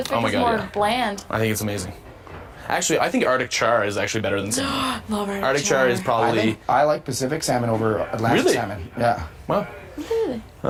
Oh my is God, more yeah. bland. I think it's amazing. Actually, I think Arctic char is actually better than salmon. Love Arctic char is I probably think I like Pacific salmon over Atlantic Really? salmon. Yeah. well.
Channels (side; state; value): both; identical; correlation 1.00